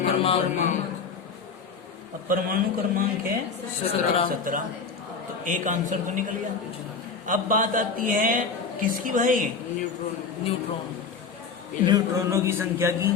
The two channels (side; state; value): right; quieter; 5.3 dB